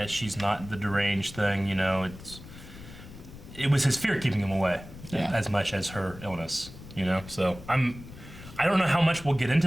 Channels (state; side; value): noise; left; rumble, 16 dB below the sound